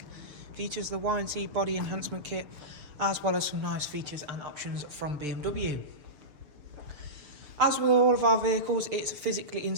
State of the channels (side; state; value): left; late; 6.8 ms